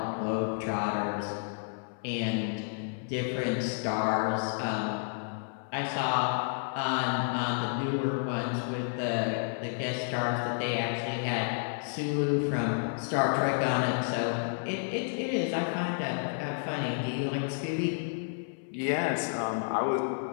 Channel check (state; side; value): silent; right; 57 dB below the other